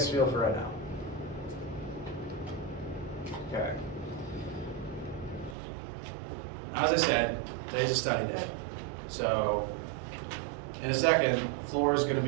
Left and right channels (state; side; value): drops out; left; at 5.6 s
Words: feel for right now? Okay. As I said, today's a study day. So, in a second, the floor is going to